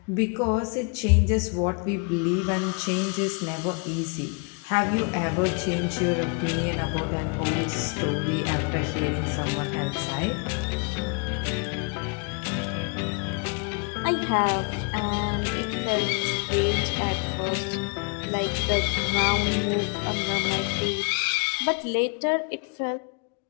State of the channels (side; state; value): right; quieter; 35.8 dB